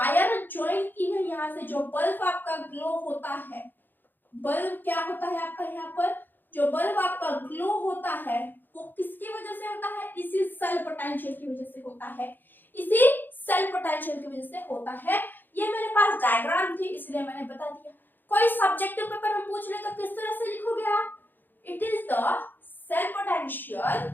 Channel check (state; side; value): late; right; 0.091 ms